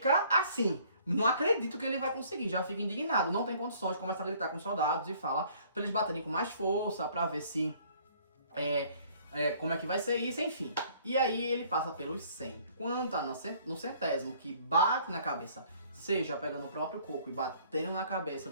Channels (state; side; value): inverted; both; correlation -0.58